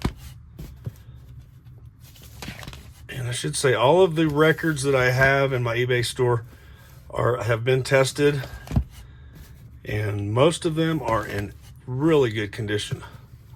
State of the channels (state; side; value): identical; both; correlation 1.00